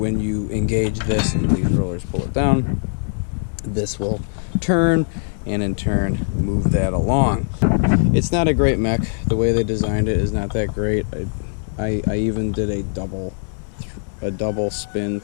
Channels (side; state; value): right; silent; 65 dB below the other